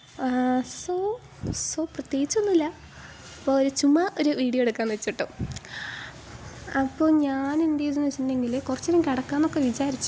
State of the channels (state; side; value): identical; both; correlation 1.00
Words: സോ സോ പ്രത്യേകിച്ചൊന്നുമില്ല. അപ്പോൾ ചുമ്മാ ഒരു വീഡിയോ എടുക്കാമെന്ന് വെച്ചിട്ടോ. അപ്പോൾ ഞാൻ എന്ത് ചെയ്തെന്ന് വെച്ചിട്ടുണ്ടെങ്കിൽ കുറച്ച് നേരം കിടക്കാമെന്നൊക്കെ